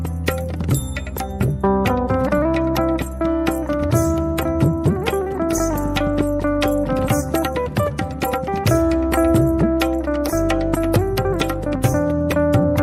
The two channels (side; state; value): both; identical; correlation 1.00